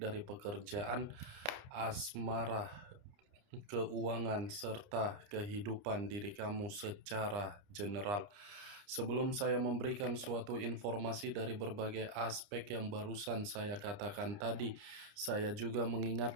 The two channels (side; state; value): left; late; 29 ms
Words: pekerjaan, asmara, keuangan, serta kehidupan diri kamu secara general. Sebelum saya memberikan suatu informasi dari berbagai aspek yang barusan saya katakan tadi, saya juga